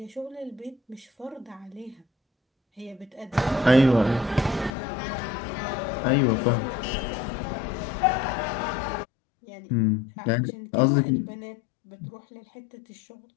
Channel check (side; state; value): right; drops out; at 4.7 s